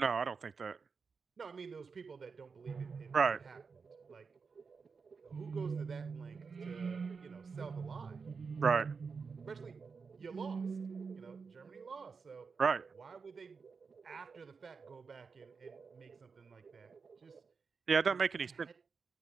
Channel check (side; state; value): left; quieter; 5.2 dB